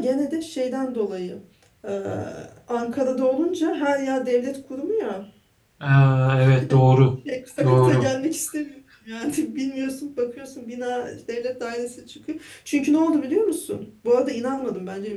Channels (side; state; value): both; identical; correlation 1.00